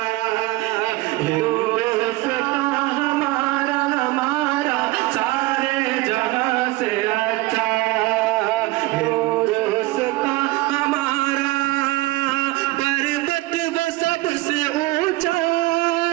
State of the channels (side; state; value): left; quieter; 19.7 dB